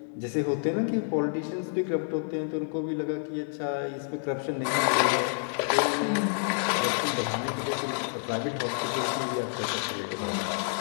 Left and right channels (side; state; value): right; silent; 59 dB below the other